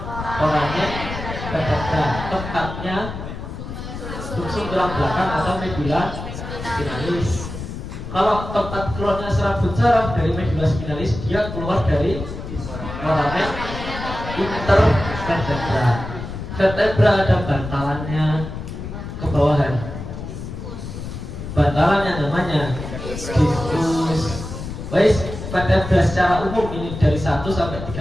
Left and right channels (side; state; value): left; noise; rumble, 8 dB below the sound